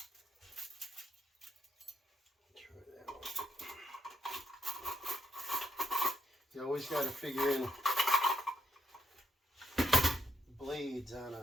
Try that one. You always got to figure in blades on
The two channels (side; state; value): both; normal; correlation 0.79